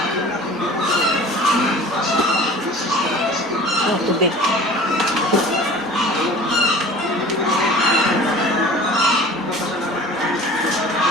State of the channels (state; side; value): normal; both; correlation 0.43